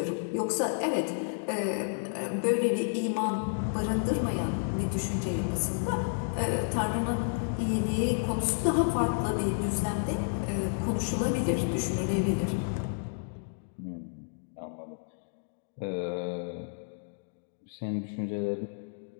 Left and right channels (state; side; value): silent; right; digital silence